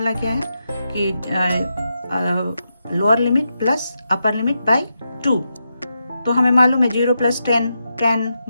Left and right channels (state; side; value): inverted; both; correlation -0.86